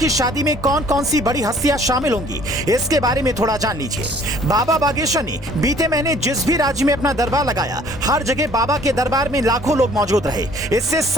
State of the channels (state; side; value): normal; both; correlation 0.56